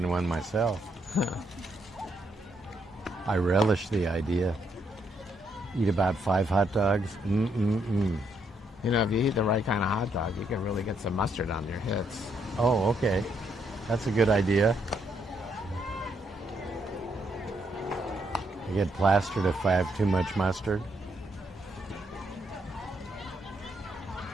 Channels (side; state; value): both; normal; correlation 0.75